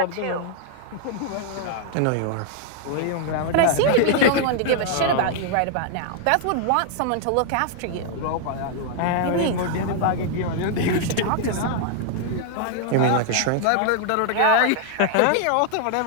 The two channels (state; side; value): different; both; correlation 0.00